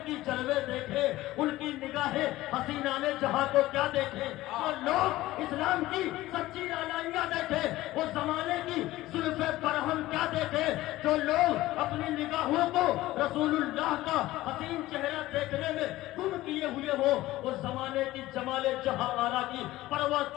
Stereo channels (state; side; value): quieter; right; 16.8 dB